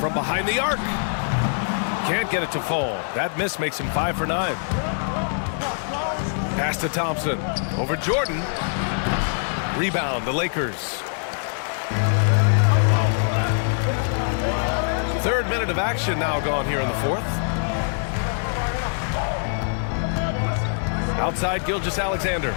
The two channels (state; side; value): silent; right; digital silence